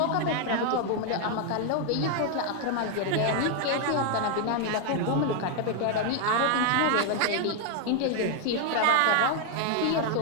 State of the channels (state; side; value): different; both; correlation 0.00